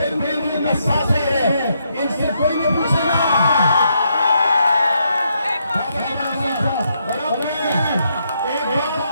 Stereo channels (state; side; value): inverted; both; correlation -0.77